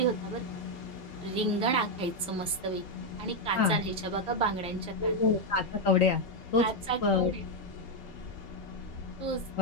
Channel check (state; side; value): normal; both; correlation 0.02